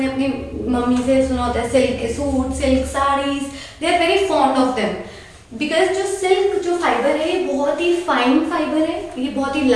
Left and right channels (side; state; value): both; identical; correlation 1.00